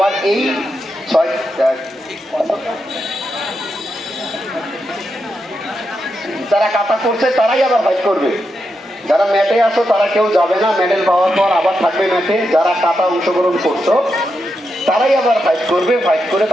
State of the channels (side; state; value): both; normal; correlation 0.85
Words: এই যারা কাটা করছে তারাই আবার ফাইট করবে। যারা ম্যাটে আসো তারা কেউ যাবে না, মেডেল পাওয়ার পর আবার থাকবে ম্যাটে। যারা কাটা অংশগ্রহণ করছো তারাই আবার ফাইট করবে, ফাইট করে